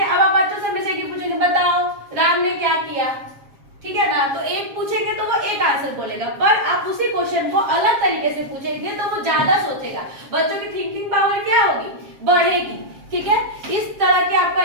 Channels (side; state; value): left; late; 7.4 ms